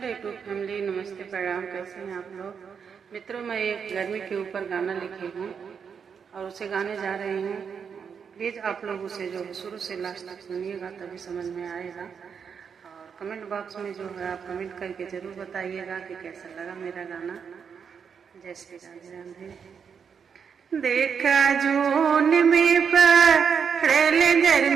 YouTube family, नमस्ते, प्रणाम। कैसे हैं आप लोग मित्रों? मैं एक गर्मी के ऊपर गाना लिखी हूँ और उसे गाने जा रही हूँ। प्लीज़ आप लोग उसे जो शुरू से लास्ट तक सुनिएगा, तभी समझ में आएगा। और कमेंट बॉक्स में जो है आप कमेंट करके ज़रूर बताइएगा कि कैसा लगा मेरा गाना। जय श्री राधे राधे। देखा जून में पड़ल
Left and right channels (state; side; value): quieter; left; 6.7 dB